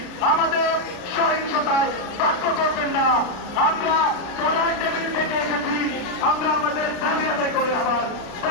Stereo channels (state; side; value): late; right; 32 ms